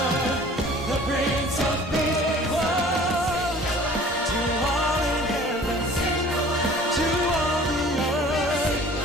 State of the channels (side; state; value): both; normal; correlation 0.48